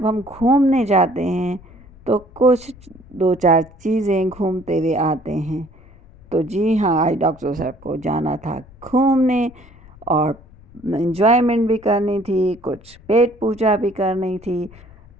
ہم گھومنے جاتے ہیں تو کچھ دو چار چیزیں گھومتے ہوئے آتے ہیں۔ تو جی ہاں، آج ڈاکٹر صاحب کو جانا تھا گھومنے اور انجوائمنٹ بھی کرنی تھی، کچھ پیٹ پوجا بھی کرنی تھی،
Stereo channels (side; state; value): left; noise; rumble, 23 dB below the sound